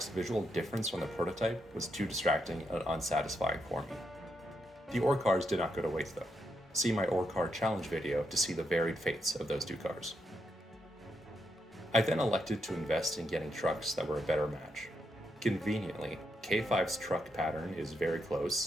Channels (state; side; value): normal; both; correlation 0.81